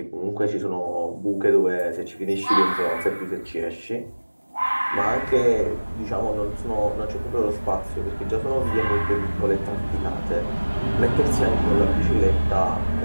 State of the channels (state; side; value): inverted; both; correlation -1.00